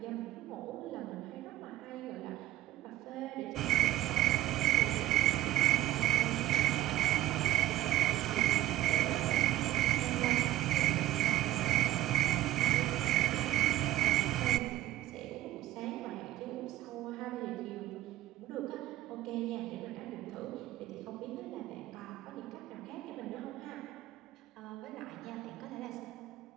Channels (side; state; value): left; quieter; 14.4 dB